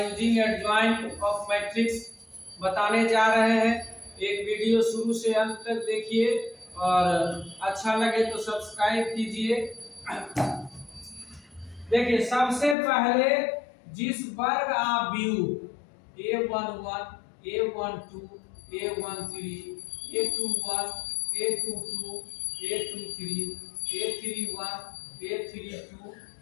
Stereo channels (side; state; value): right; drops out; at 12.8 s